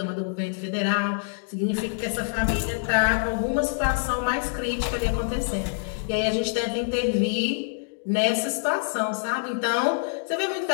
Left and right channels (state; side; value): silent; right; digital silence